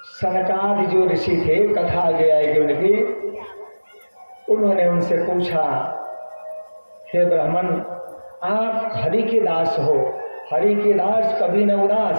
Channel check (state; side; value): inverted; both; correlation -1.00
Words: सनकादि जो ऋषि थे, कथा आगे आएगी उनकी, उन्होंने उनसे पूछा, हे ब्राह्मण, आप हरि के दास हो, हरि के दास कभी न उदास।